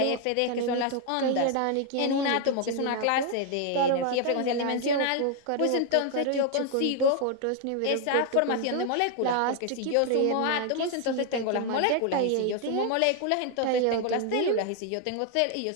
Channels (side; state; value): both; different; correlation 0.00